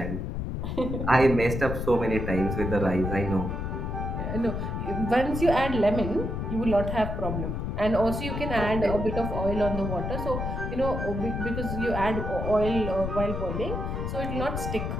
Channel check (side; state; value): left; noise; rumble, 3 dB below the sound